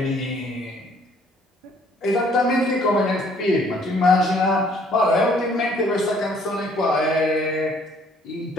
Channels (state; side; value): normal; both; correlation 0.61